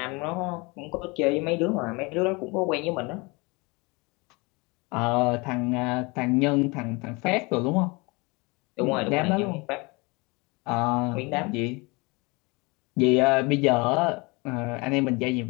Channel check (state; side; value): quieter; right; 26.9 dB